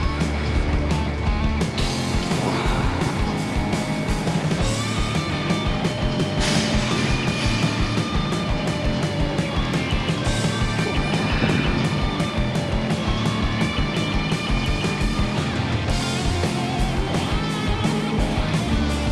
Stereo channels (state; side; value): identical; both; correlation 1.00